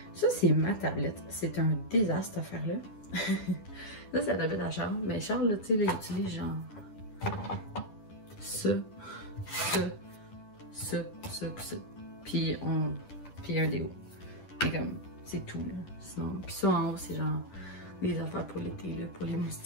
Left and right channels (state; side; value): late; right; 10 ms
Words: Ça, c'est ma tablette. C'est un désastre, cette affaire-là. Ça, c'est la tablette à Charles. Mais Charles, là, tu sais, il utilise genre ça. Puis un déo. Et comme, c'est tout, là. Sinon, puis ça, en haut, c'est genre des affaires pour l'été, là, pour les